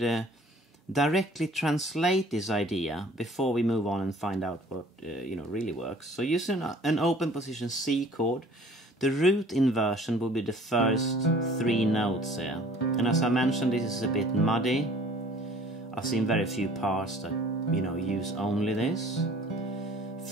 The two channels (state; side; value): normal; both; correlation 0.52